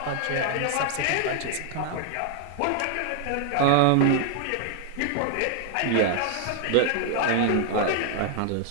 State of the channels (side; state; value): both; different; correlation 0.00